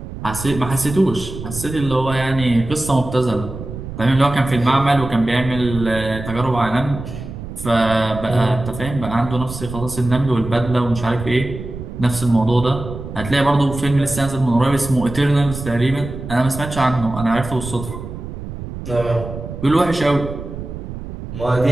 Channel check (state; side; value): noise; right; rumble, 10 dB below the sound